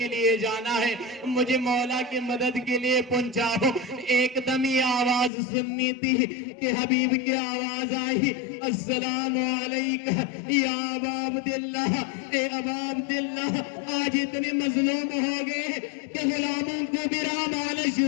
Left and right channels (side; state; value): right; drops out; at 5.3 s